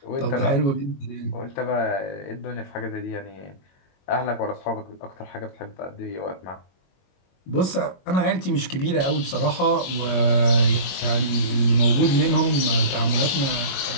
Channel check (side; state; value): right; late; 22 ms